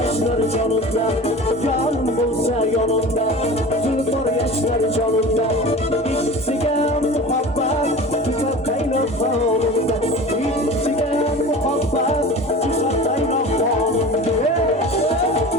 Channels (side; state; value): both; normal; correlation 0.36